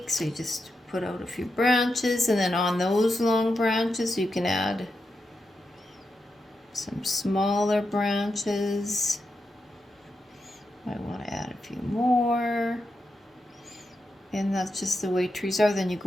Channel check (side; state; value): both; normal; correlation 0.87